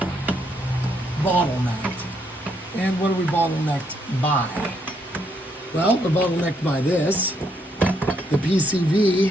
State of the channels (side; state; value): both; normal; correlation 0.74